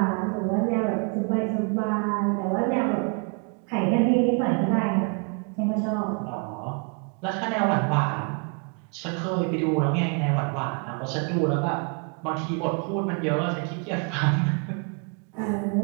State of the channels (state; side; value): quieter; left; 36.5 dB